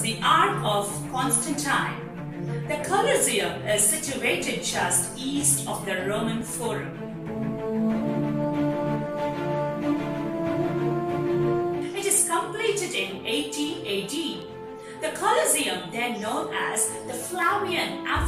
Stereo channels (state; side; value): identical; both; correlation 1.00